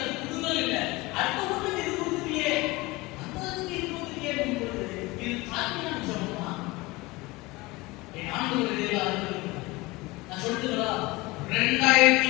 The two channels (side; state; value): right; quieter; 22.2 dB